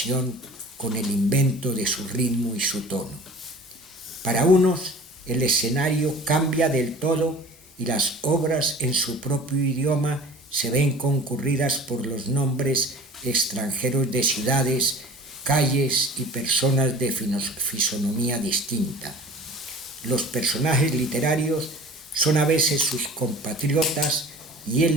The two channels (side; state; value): both; normal; correlation 0.43